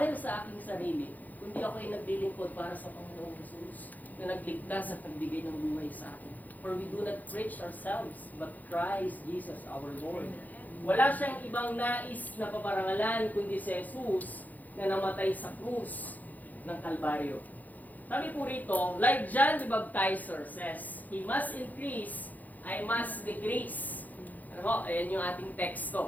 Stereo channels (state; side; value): late; right; 0.081 ms